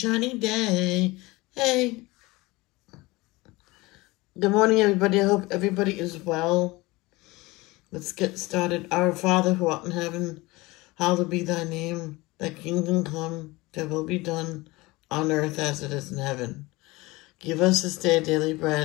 day. Hey, good morning, everybody. I hope everybody is well. Let's get started. Our Father who art in heaven, hallowed be thy name. Thy kingdom come, thy will be done on earth as it is in heaven. Give us this day daily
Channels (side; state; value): right; quieter; 21.8 dB